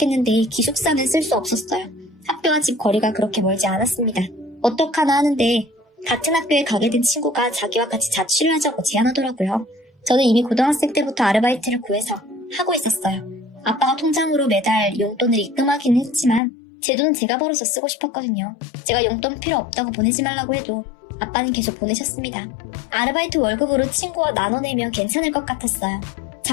기숙사는 쓸 수 없었어요. 학교와 집 거리가 그렇게 멀지 않았습니다. 어떡하나 하는데 같은 학교에 가게 된 친구가 자기와 같이 자취를 하자고 제안하더라고요. 저는 이미 고등학생 때부터 아르바이트를 구해서 하고 있었어요. 아빠가 통장으로 매달 용돈을 입금하기는 했지만 제 돈은 제가 벌어서 쓰고 싶었거든요. 제가 용돈 필요 없다고 보내지 말라고 해도 아빠는 계속 보내셨습니다. 아르바이트 월급으로 친구와 나눠내면 괜찮을 것 같았어요.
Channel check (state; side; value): drops out; right; at 16.4 s